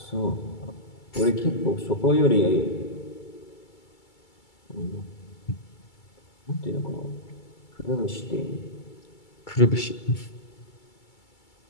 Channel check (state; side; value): late; right; 2.3 ms